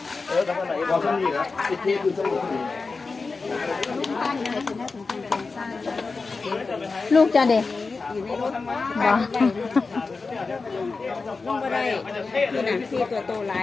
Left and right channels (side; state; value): right; quieter; 4.2 dB